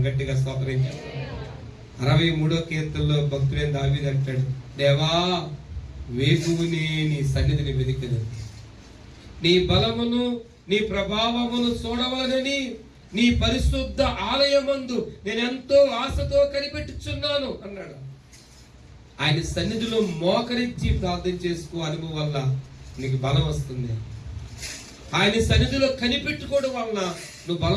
గట్టిగా స్తోత్రం చేస్తాం. 63వ కీర్తనలో భక్తుడైన దావీదు అంటాడు, దేవా వేకువనే నీ సన్నిధిని వెదికెదను, నీ బలమును నీ ప్రభావమును చూడవలనని నీ పరిశుద్ధ ఆలయమందు నేను ఎంతో ఆశతో కనిపెట్టుచున్నాను అన్నాడు. ఆయన సన్నిధిలో మోకరించి ప్రార్థన చేసుకో అనుభవం వల్ల నీకు బలం వస్తుంది. ఆయన సన్నిధిలో కనిపెట్టుకోవడం వలన నువ్వు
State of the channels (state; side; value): identical; both; correlation 1.00